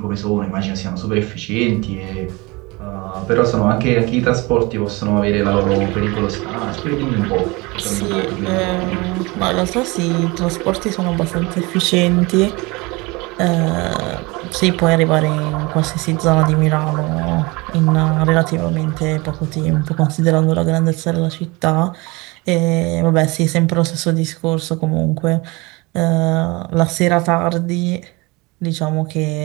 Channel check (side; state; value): left; quieter; 24.8 dB